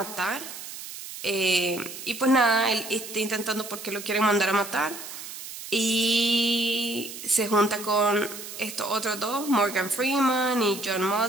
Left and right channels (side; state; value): right; noise; hiss, 11 dB below the sound